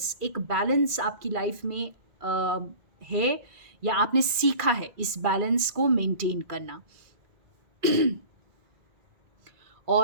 आपकी लाइफ में है, या आपने सीखा है इस बैलेंस को मेंटेन करना।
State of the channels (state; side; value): late; left; 2.4 ms